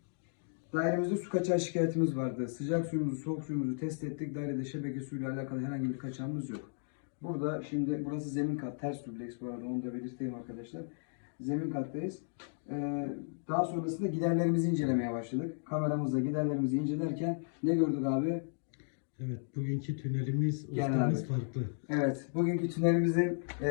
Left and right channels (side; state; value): right; silent; digital silence